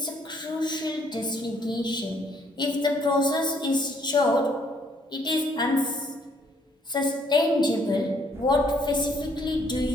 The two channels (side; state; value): both; normal; correlation 0.66